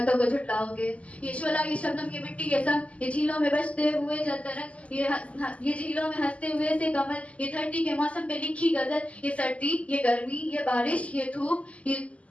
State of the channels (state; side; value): late; right; 0.065 ms